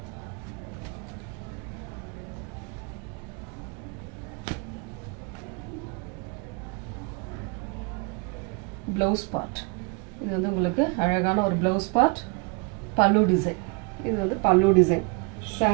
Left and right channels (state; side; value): quieter; left; 31.9 dB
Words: பிளவுஸ் பார்ட் இது வந்து உங்களுக்கு அழகான ஒரு பிளவுஸ் பார்ட். பல்லு டிசைன், இது வந்து பல்லு டிசைன்.